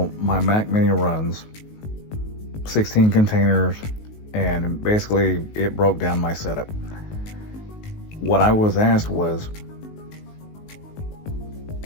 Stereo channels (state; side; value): late; right; 19 ms